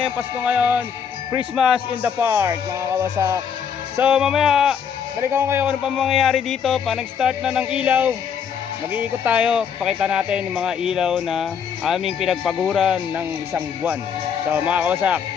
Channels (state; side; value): quieter; right; 7.5 dB